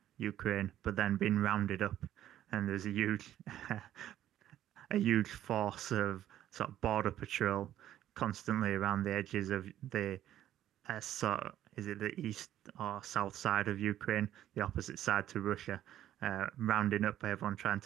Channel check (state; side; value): quieter; left; 12.1 dB